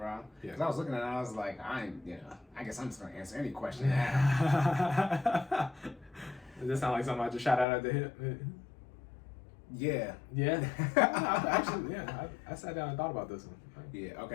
Yeah. Because I was looking at it, I was like, I guess I'm just gonna answer any question now. Does this sound like something I just shot out at the hip? Yeah. Yeah. Actually, yeah. I sat down and thought about this one. Yeah.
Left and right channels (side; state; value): right; drops out; at 7.7 s